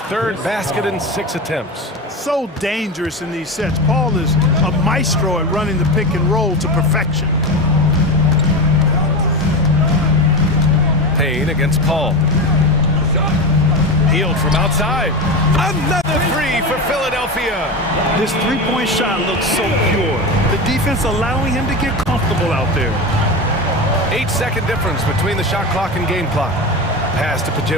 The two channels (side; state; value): both; normal; correlation 0.21